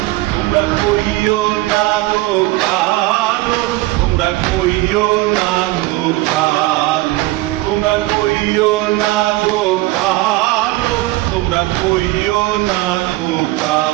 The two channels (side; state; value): left; quieter; 19.5 dB